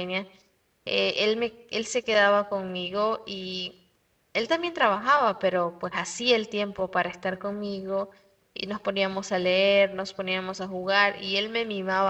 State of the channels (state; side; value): identical; both; correlation 1.00